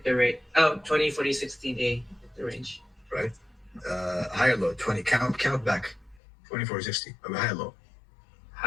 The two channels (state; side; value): drops out; right; at 6.2 s